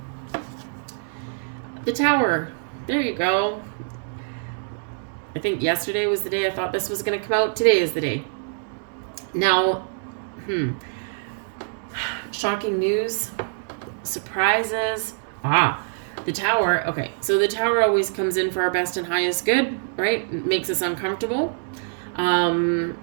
The Tower. There you go. I think yesterday was the day I thought this was going to come out. Today is the day. Now, shocking news. Surprises. The Tower, okay, so the Tower always comes in for our best and highest good, right? It makes us uncomfortable.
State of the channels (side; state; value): left; silent; digital silence